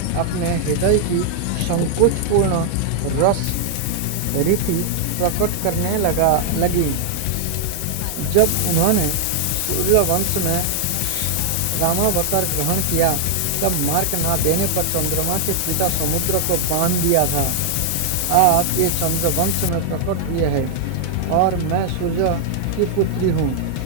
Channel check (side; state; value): both; different; correlation 0.00